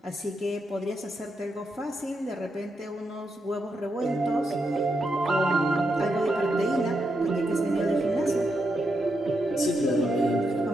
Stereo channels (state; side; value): normal; both; correlation 0.83